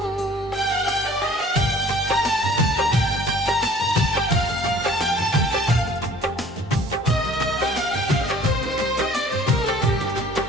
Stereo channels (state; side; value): normal; both; correlation 0.52